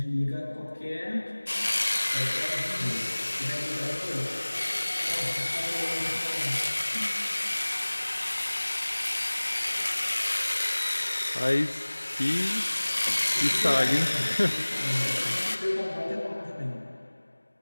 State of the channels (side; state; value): both; inverted; correlation -1.00